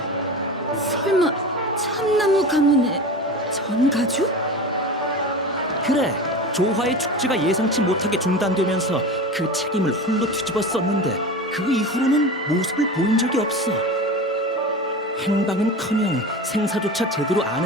설마 참나무 가문의 전가주? 그래, 조화의 축제가 예상치 못하게 중단되면서 그 책임을 홀로 뒤집어 썼는데 그 이후로는 모습을 보인 적이 없어. 행방은커녕 생사조차 제대로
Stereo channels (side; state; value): both; normal; correlation 0.30